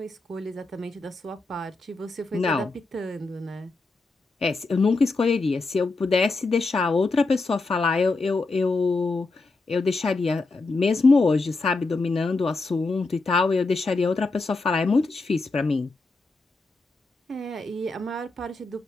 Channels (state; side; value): quieter; right; 3.5 dB